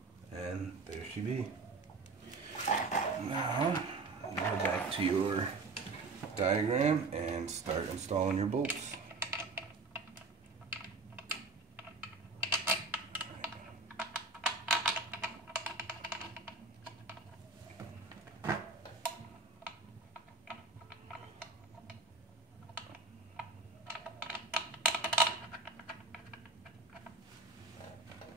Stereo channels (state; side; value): quieter; left; 3.7 dB